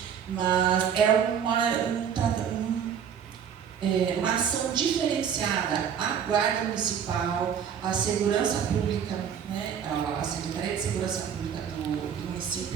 mas é uma ação diferenciada. A Guarda Municipal, a Segurança Pública, né, a Secretaria de Segurança Pública do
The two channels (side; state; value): left; quieter; 8.0 dB